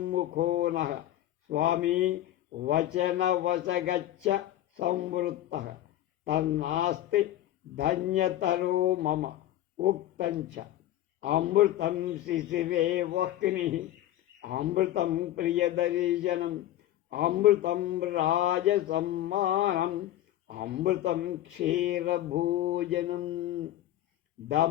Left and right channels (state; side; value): quieter; right; 13.4 dB